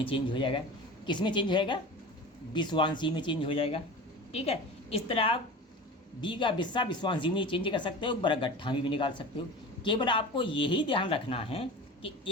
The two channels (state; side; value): normal; both; correlation 0.34